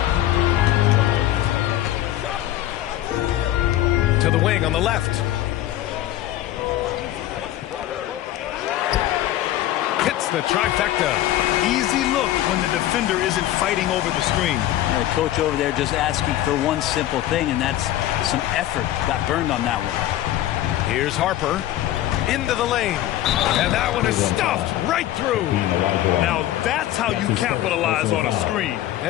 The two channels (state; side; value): quieter; right; 13.8 dB